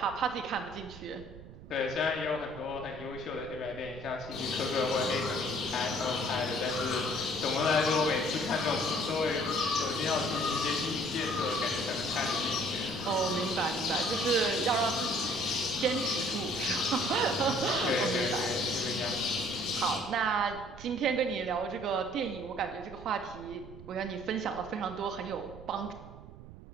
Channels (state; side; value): noise; right; rumble, 16 dB below the sound